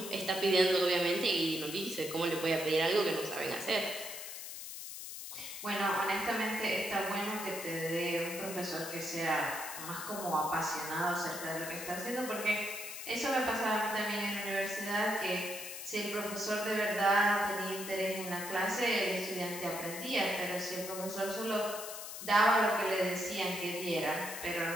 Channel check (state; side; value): noise; left; hiss, 9 dB below the sound